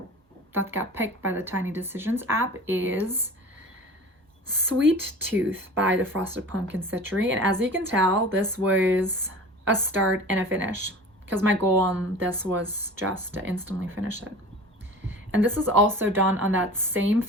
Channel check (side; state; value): both; normal; correlation 0.39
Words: picked by the Tiny Decisions app is Sweet Tooth by the Frosted Pumpkin Stitchery. And as you can tell, this was a start and a finish because my goal on this was just to instantly finish it. And this is also done on that same